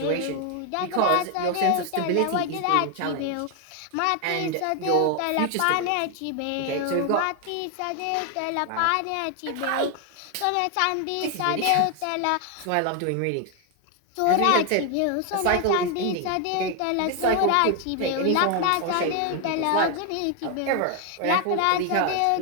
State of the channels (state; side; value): different; both; correlation 0.01